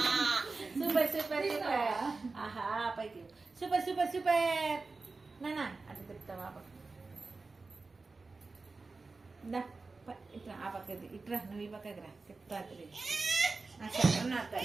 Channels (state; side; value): quieter; left; 3.9 dB